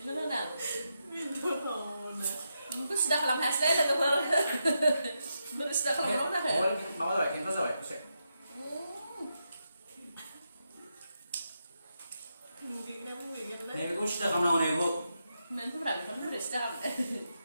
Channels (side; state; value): both; inverted; correlation -0.85